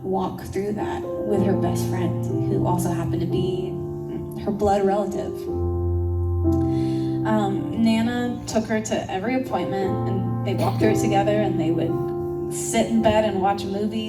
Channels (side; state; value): both; identical; correlation 1.00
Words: walk through that with her best friend, who also happened to be her blood relative. Nana took her to every appointment, and they walked through it together, and they would sit in bed and watch